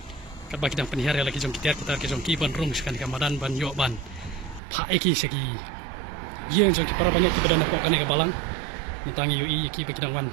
kat bagi dang penihar lagi jong kita ki jong ki ban rung sekan kamadan ban yo ban pa eki segi yang jong ki para banyak ki badan ko kan ke balang mentangi UI ki bagi dang wan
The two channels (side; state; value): left; drops out; at 4.6 s